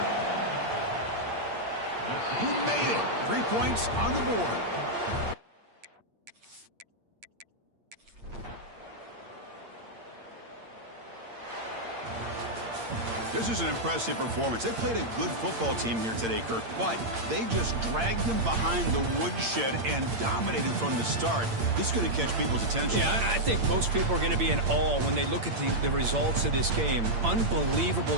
He made it. 3 points on the board. This is an impressive performance. They played a good football team here today, Kirk, but they just dragged them behind the woodshed and dominated from the start. This is going to catch people's attention. Yeah, I think most people are going to be in awe when they look at the results of this game.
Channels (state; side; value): late; left; 8.7 ms